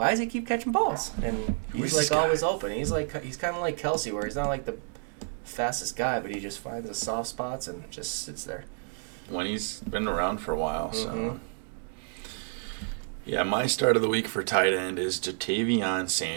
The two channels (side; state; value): left; silent; digital silence